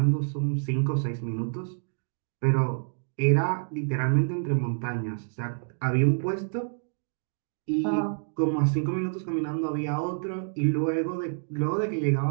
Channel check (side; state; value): left; silent; digital silence